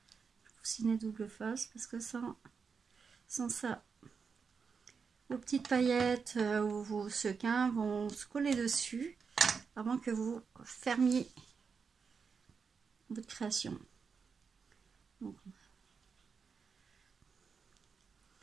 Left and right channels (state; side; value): quieter; left; 5.7 dB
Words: coussinet double face, parce que sans ça, vos petites paillettes ou vos sequins vont se coller dessus avant que vous fermiez votre création. Donc,